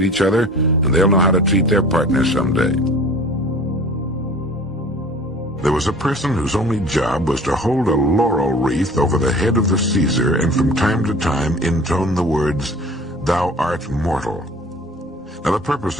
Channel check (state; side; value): normal; both; correlation 0.44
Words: each other, and they'll know how to treat their partner someday. There was a person whose only job was to hold a laurel wreath over the head of the Caesar and from time to time intone the words, "Thou art mortal." Now the purpose